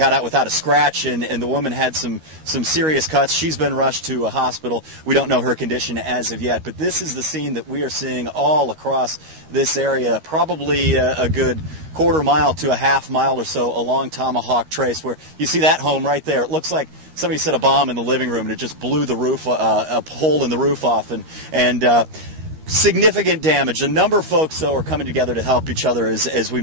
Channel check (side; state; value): left; late; 13 ms